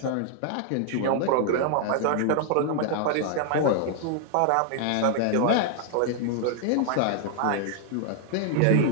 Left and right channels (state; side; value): different; both; correlation 0.00